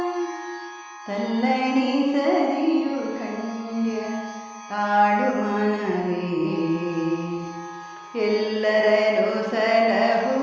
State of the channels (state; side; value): identical; both; correlation 1.00